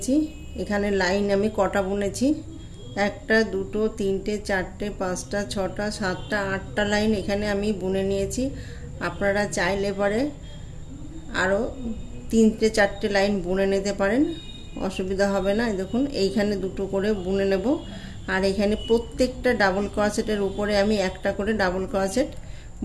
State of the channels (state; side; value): identical; both; correlation 1.00